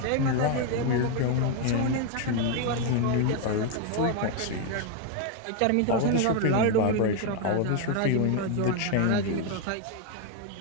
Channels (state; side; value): different; both; correlation 0.01